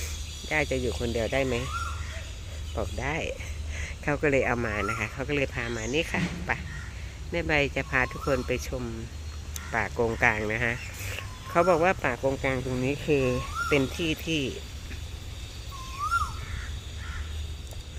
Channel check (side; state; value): both; identical; correlation 1.00